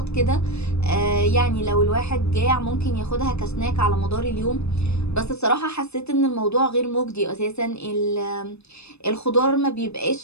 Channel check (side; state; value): right; late; 0.80 ms